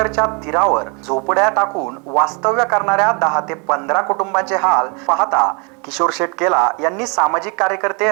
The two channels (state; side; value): quieter; left; 33.3 dB